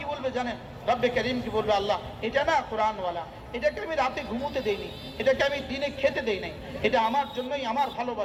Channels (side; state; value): both; identical; correlation 1.00